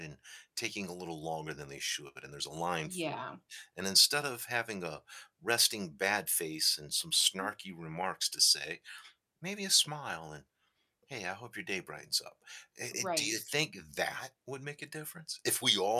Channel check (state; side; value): identical; both; correlation 1.00